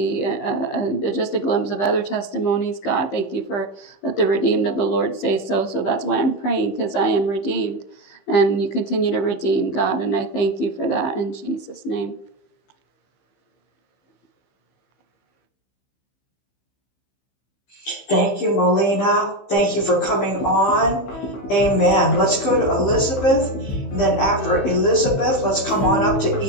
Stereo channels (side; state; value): right; late; 15 ms